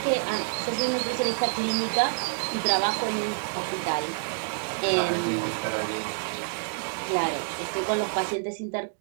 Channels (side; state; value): left; silent; digital silence